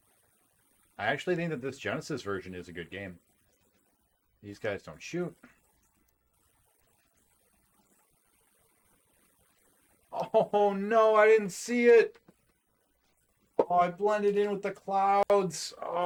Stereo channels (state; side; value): identical; both; correlation 1.00